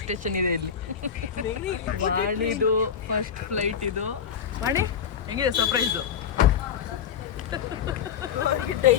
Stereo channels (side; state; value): right; quieter; 7.8 dB